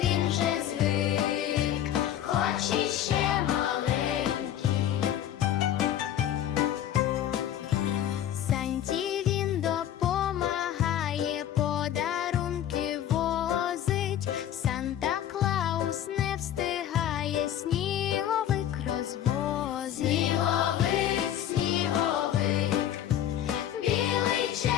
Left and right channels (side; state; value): right; quieter; 11.0 dB